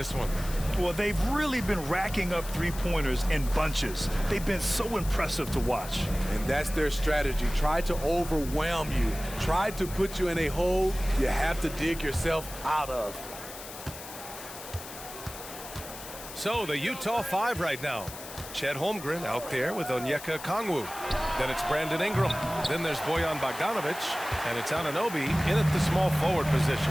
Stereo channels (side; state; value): left; noise; hiss, 13 dB below the sound